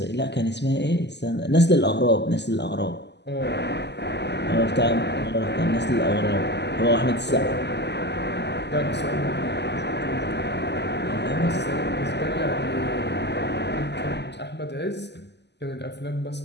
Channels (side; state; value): right; late; 0.50 ms